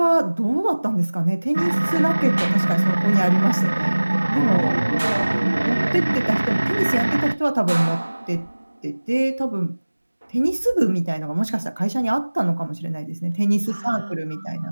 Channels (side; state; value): both; inverted; correlation -1.00